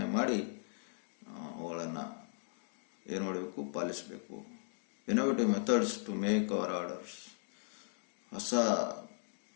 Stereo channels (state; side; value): silent; right; digital silence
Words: ಮಾಡಿ ಅವುಗಳನ್ನು ಏನು ಮಾಡಬೇಕು, ಪಾಲಿಸಬೇಕು. Innovative methods to make our orders. ಹೊಸ